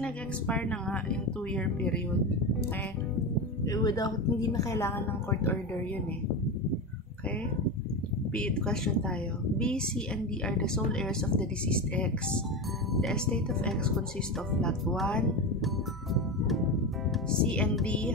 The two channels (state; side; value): normal; both; correlation 0.20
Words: nag-expire na nga yung 2-year period. Okay? Hindi na kailangan ng court order yun eh. Okay? Question tayo. B, C, and D are the sole heirs of the deceased X. The estate of X consists of lot 1. C and D